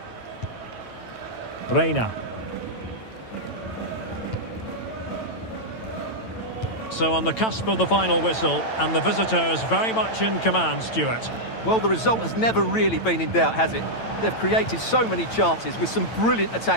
Reina. So on the cusp of the final whistle, and the visitors very much in command, Stuart. Well, the result has never really been in doubt, has it? They've created so many chances with some brilliant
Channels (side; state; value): right; late; 9.0 ms